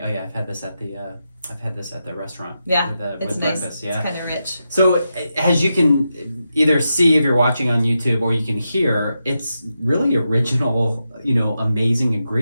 Oh yeah, I've had this at the restaurant. Yeah, with it's nice. breakfast. Yeah, it's kind of rich. So as you can either see if you're watching on YouTube, or you can hear, it's really original, you know, amazing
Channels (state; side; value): inverted; both; correlation -0.87